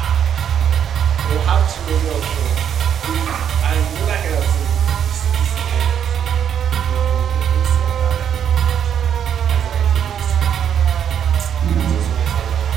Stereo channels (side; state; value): left; quieter; 8.8 dB